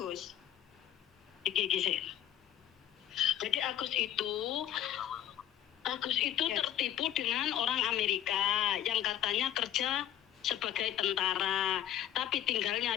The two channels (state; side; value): quieter; right; 11.3 dB